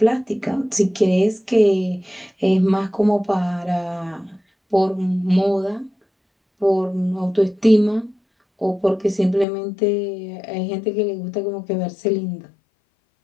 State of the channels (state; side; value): drops out; right; at 9.5 s